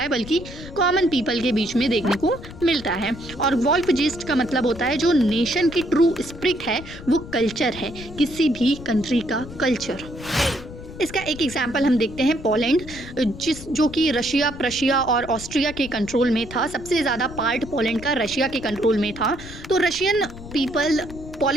बल्कि कॉमन पीपल के बीच में देखने को मिलता है। और वॉल्कजीस्ट का मतलब होता है जो नेशन की ट्रू स्पिरिट है, वो कल्चर है, किसी भी कंट्री का कल्चर। इसका एक एग्जाम्पल हम देखते हैं, पोलैंड, जो कि रशिया, प्रशिया और ऑस्ट्रिया के कंट्रोल में था। सबसे ज़्यादा पार्ट पोलैंड का रशिया के कंट्रोल में था। तो रशियन पीपल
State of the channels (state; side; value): noise; left; rumble, 14 dB below the sound